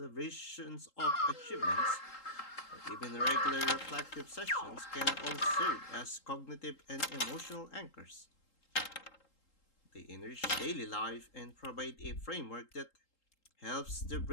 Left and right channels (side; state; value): right; late; 3.8 ms